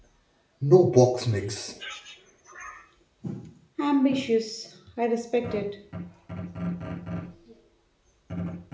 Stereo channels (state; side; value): identical; both; correlation 1.00